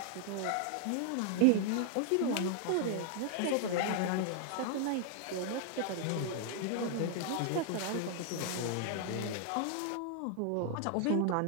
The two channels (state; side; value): different; both; correlation 0.00